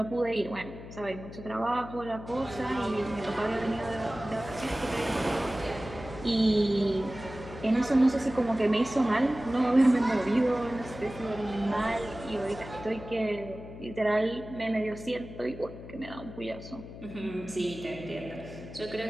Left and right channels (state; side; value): noise; left; hum, 13 dB below the sound